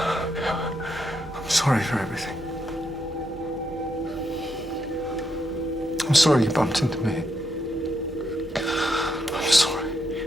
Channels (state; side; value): normal; both; correlation 0.80